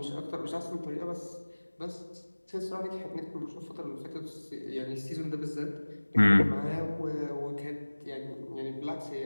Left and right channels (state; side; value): inverted; both; correlation -1.00